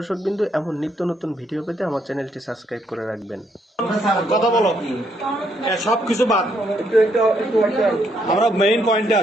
এমন নিত্য নতুন ভিডিও পেতে আমার চ্যানেলটি সাবস্ক্রাইব করে রাখবেন। কথা বলো, সবকিছু বাদ, আমরা মেইন পয়েন্টে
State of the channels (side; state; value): both; normal; correlation 0.73